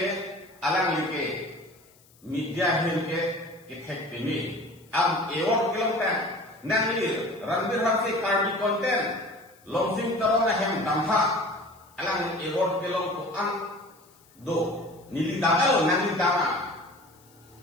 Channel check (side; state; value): left; noise; hiss, 29 dB below the sound